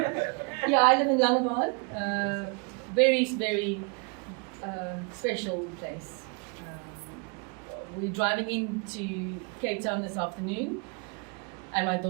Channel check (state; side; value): quieter; left; 34.1 dB